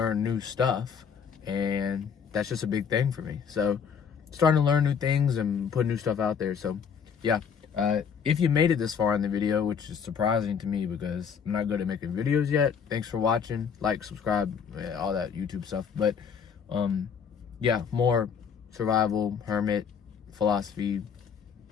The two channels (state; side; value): quieter; right; 6.9 dB